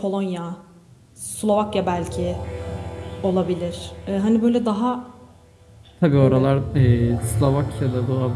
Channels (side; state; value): both; identical; correlation 1.00